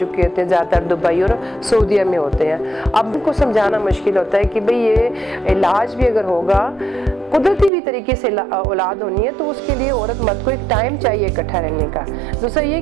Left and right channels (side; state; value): left; drops out; at 7.7 s